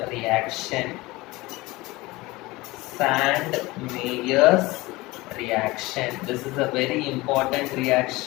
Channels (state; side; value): quieter; right; 21.1 dB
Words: reaction. Sand-Meyer's reaction. This is a very important